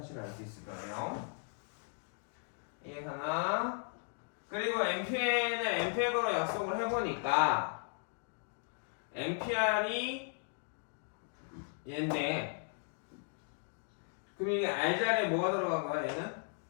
알 수 있을 거예요. 이해가나? 그리고 NPN을 NPX로 약속을 해보니까 NPR이 얘인데 그럼 이게 R 자리에 뭐가 들어간 거야 얘는?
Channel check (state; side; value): silent; right; 53 dB below the other